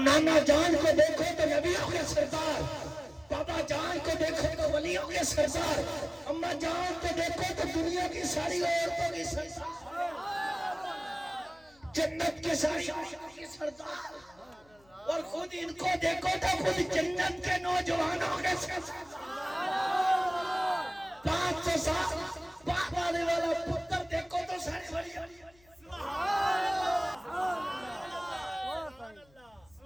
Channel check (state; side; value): noise; left; hum, 30 dB below the sound